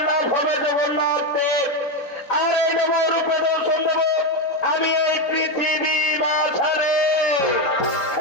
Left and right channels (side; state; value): right; late; 3.6 ms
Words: নাম হবে জগন্নাথ দেব। আর এই নবরূপে দর্শন দেব আমি এই পৃথিবী মাঝারে।